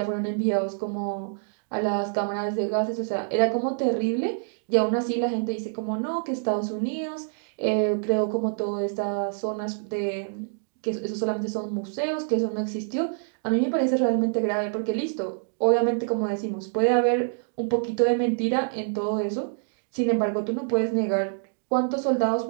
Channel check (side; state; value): left; silent; digital silence